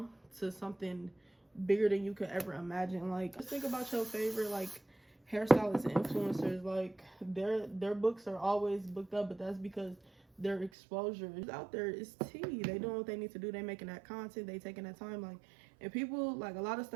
to something bigger than you could ever imagine. Like, just think about your favorite like hairstylists and influencers. Like, their books are always booked up, but that's because their exposure is out there. Is tea. They doing what they need to do. They making that content. They taking that time. Like, and people, like, a lot of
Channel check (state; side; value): drops out; left; at 10.7 s